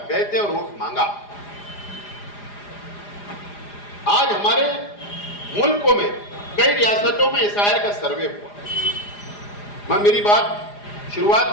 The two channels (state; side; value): late; right; 4.9 ms